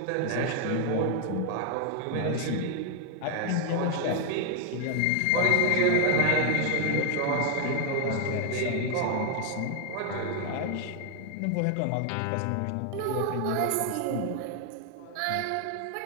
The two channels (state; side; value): different; both; correlation 0.00